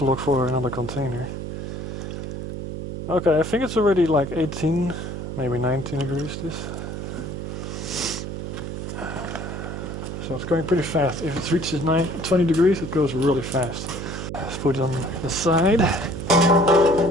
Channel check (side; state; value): right; noise; hum, 6 dB below the sound